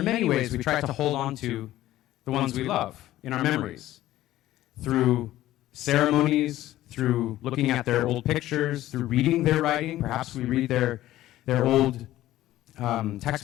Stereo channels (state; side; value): quieter; right; 14.7 dB